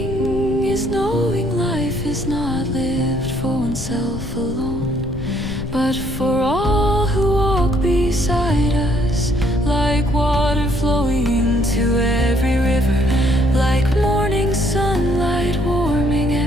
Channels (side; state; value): left; noise; rumble, 7 dB below the sound